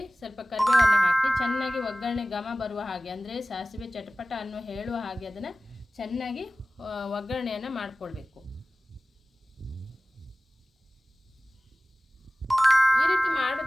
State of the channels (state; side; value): normal; both; correlation 0.97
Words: ಸ್ವಲ್ಪ ಕರಿಬೇವನ್ನು ಹಾಕಿ ಚೆನ್ನಾಗಿ ಒಗ್ಗರಣೆ ಘಮ ಬರುವ ಹಾಗೆ, ಅಂದರೆ ಸಾಸಿವೆ ಚಟಪಟ ಅನ್ನೋ ಹೇಳುವ ಹಾಗೆ ಅದನ್ನು ಚೆನ್ನಾಗಿ ಒಗ್ಗರಣೆಯನ್ನು ಮಾಡಿಕೊಳ್ಬೇಕು. ಈ ರೀತಿ